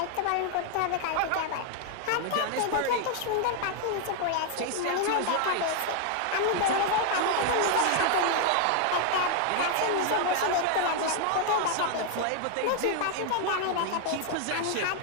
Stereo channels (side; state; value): both; different; correlation 0.00